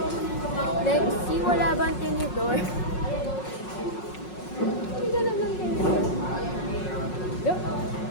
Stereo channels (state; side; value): late; right; 5.5 ms